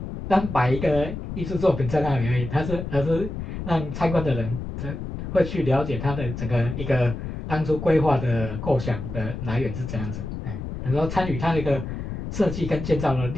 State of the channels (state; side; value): noise; left; rumble, 7 dB below the sound